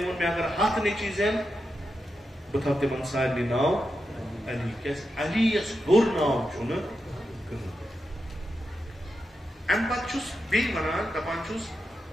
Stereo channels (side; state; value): both; normal; correlation 0.87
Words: وون میں اگر ہتھ نیچی زین بہ تھو تمن سارنی ناو علی کیاز علی یس ہور ناو چھن ام پتہ چھس بیٚیہِ ونان دپان چھس